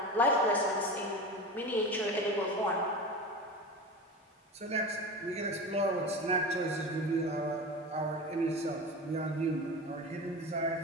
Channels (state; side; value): normal; both; correlation 0.28